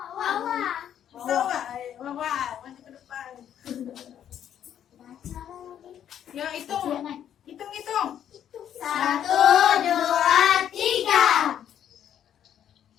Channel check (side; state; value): right; quieter; 9.9 dB